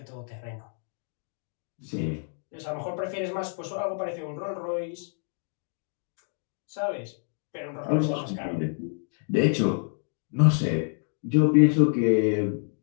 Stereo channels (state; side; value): silent; right; 59 dB below the other